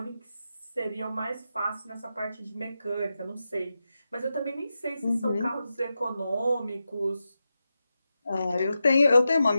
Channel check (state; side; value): inverted; both; correlation -0.90